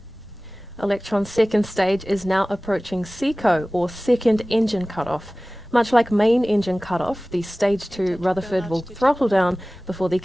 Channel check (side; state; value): both; normal; correlation 0.98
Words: Electron's second stage is now approaching SECO, or second engine cutoff. Much like main engine cutoff, the stage 2 Rutherford will throttle down before the